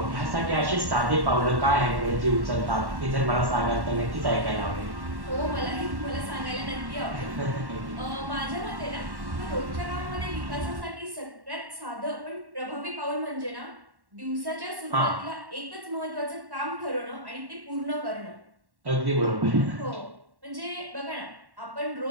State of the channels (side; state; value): left; late; 1.1 ms